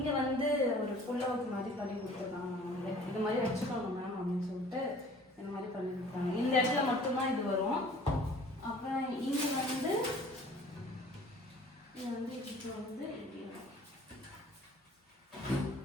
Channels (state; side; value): normal; both; correlation 0.50